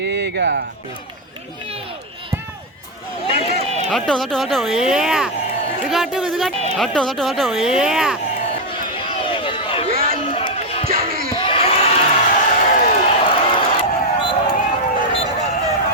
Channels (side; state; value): both; normal; correlation 0.02